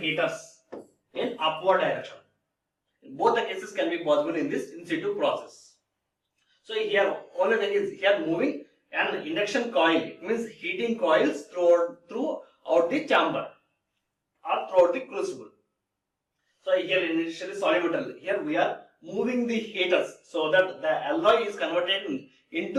in upward direction. Both the cases can be possible in this in situ process. So here only thing is here moving an induction coil. It means heating coils throughout the chamber or throughout the crucible. So here initially solid metal. Here we are moving the heaters so that the alloy is converted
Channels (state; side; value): identical; both; correlation 1.00